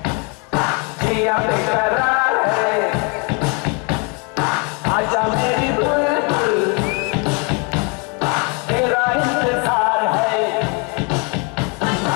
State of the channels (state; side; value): quieter; right; 31.7 dB